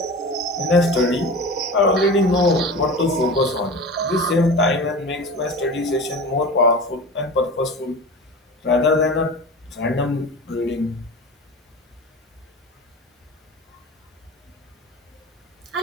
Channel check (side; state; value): both; normal; correlation 0.32